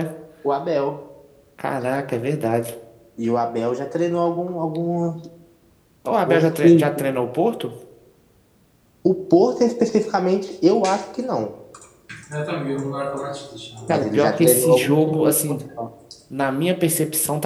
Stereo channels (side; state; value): both; identical; correlation 1.00